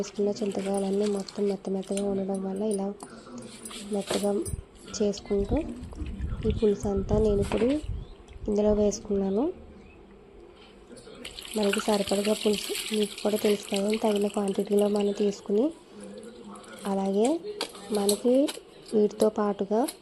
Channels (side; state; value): both; identical; correlation 1.00